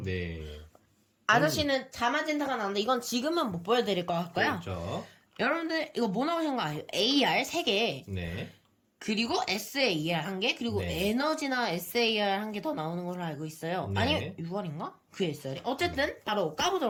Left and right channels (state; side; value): identical; both; correlation 1.00